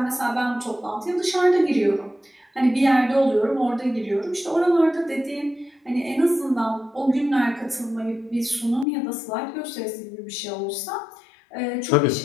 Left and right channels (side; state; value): right; drops out; at 8.8 s